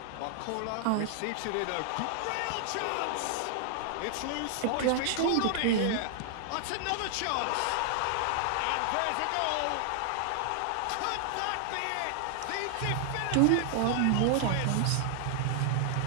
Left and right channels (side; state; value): both; different; correlation 0.00